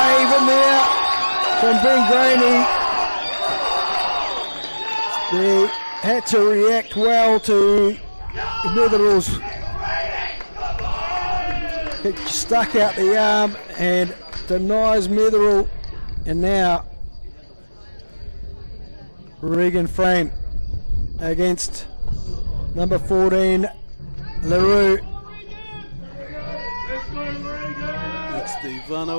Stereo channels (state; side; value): inverted; both; correlation -1.00